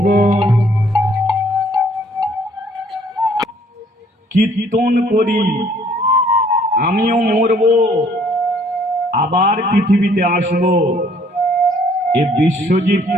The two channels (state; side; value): normal; both; correlation 0.61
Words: বল। কীর্তন করি, আমিও মরব, আবার পৃথিবীতে আসব। এ বিশ্বজিৎ